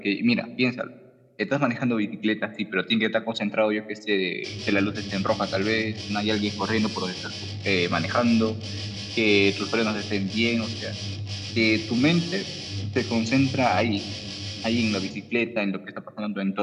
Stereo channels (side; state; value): both; identical; correlation 1.00